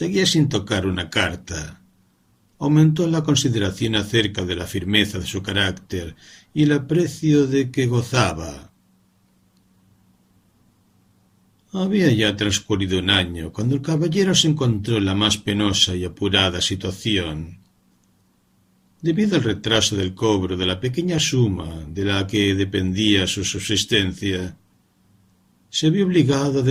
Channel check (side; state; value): both; identical; correlation 1.00